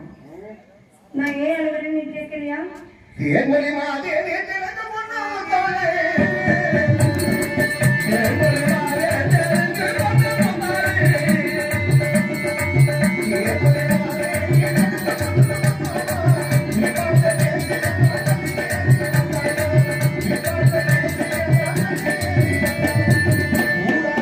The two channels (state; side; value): identical; both; correlation 1.00